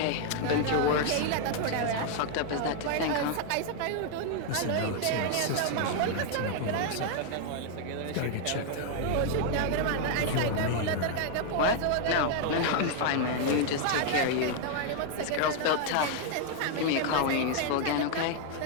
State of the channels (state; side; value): different; both; correlation 0.00